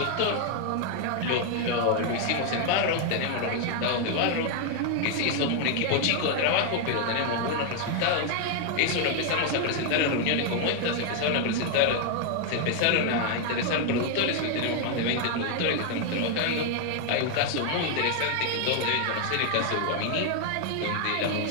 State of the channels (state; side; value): different; both; correlation 0.00